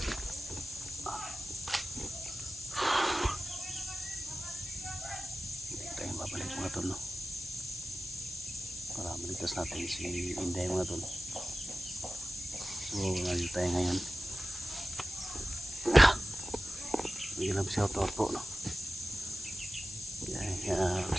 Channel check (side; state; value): left; noise; hiss, 11 dB below the sound